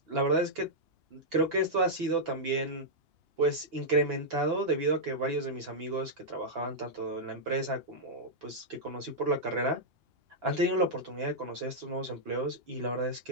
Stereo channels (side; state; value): left; late; 2.9 ms